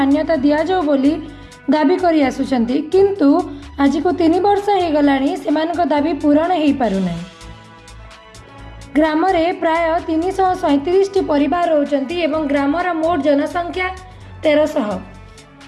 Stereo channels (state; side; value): identical; both; correlation 1.00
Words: दि जाऊ बोली दाबी करि आसुछंती, किंतु आज को 3 वर्ष हो गलानी सेमानक दाबी पूरण हो पारुना। ग्राम रे प्राय 337 परिवार रहउछंती एवं ग्रामर मोट जनसंख्या 1300।